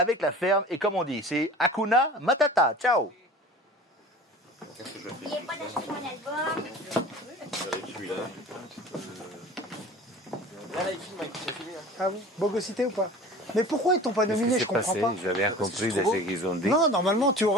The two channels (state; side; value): normal; both; correlation 0.41